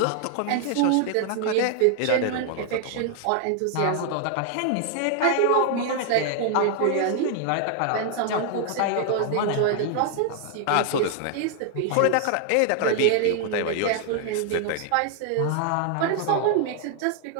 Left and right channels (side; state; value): both; different; correlation 0.00